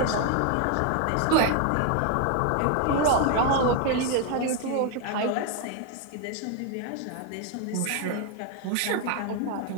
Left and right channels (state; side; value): different; both; correlation 0.01